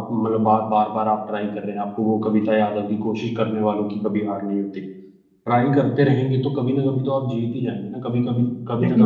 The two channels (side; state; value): both; identical; correlation 1.00